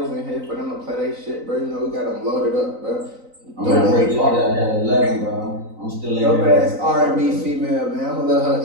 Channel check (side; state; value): left; late; 3.9 ms